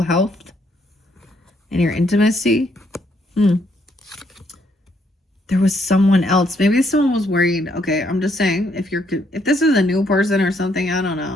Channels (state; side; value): normal; both; correlation 0.72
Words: health, and your intimacy. There was someone else. Maybe someone was worried. Okay, I'm just saying, if this is a new person or something, I don't